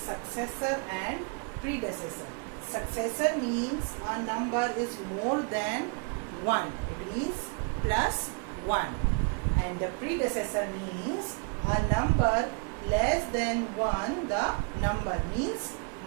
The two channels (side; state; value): left; quieter; 36.3 dB